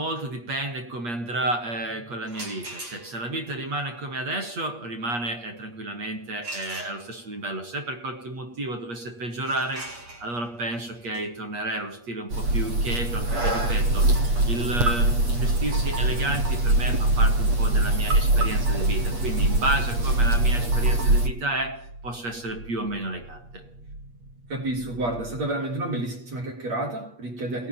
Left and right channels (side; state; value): left; late; 8.4 ms